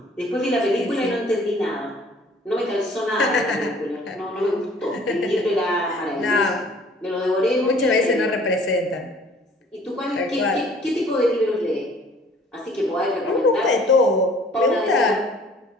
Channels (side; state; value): both; normal; correlation 0.54